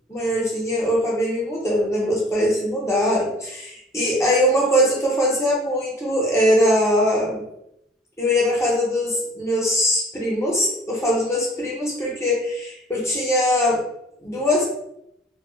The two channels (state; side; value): normal; both; correlation 0.50